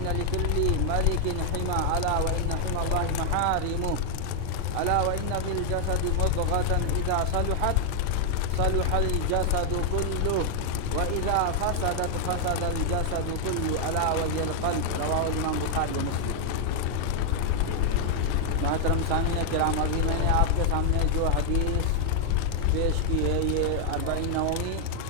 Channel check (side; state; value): both; different; correlation 0.00